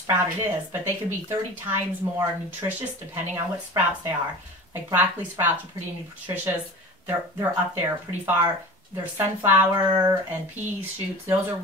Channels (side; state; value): both; normal; correlation 0.36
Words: it is, but they can be 30 times more nutritious depending on what sprouts they are. Like broccoli sprouts are pretty nutritious. They're up there pretty far. There's sunflower and pea shoots. Those are